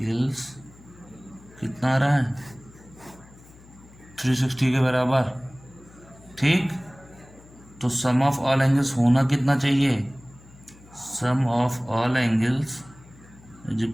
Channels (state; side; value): noise; left; hum, 23 dB below the sound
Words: कितना आ रहा है, 360 के बराबर। ठीक, तो सम ऑफ ऑल एंगल्स होना कितना चाहिए, sum of all angles is